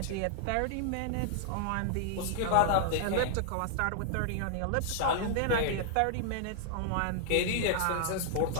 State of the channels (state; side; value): different; both; correlation -0.01